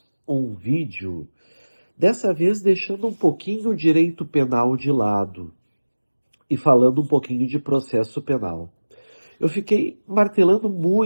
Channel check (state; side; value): inverted; both; correlation -1.00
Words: um vídeo, dessa vez deixando um pouquinho o direito penal de lado e falando um pouquinho de processo penal. Eu fiquei martelando